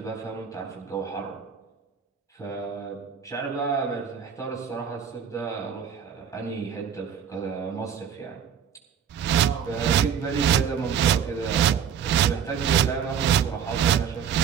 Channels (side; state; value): left; quieter; 7.9 dB